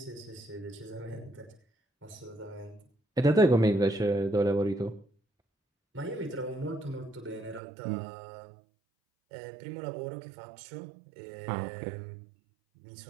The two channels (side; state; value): left; drops out; at 7.6 s